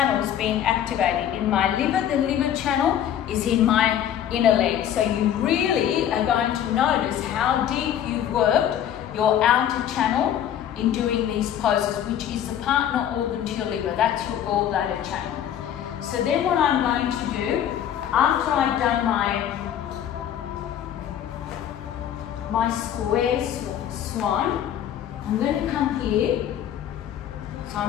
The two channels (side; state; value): right; quieter; 10.2 dB